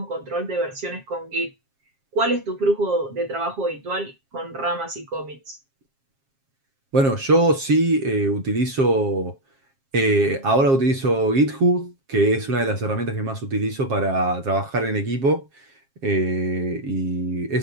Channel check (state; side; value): late; left; 7.4 ms